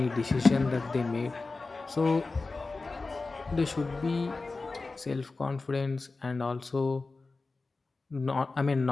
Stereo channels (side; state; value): right; quieter; 3.7 dB